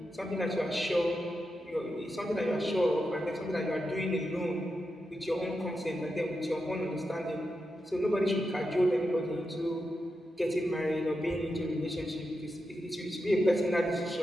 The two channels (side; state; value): both; normal; correlation 0.88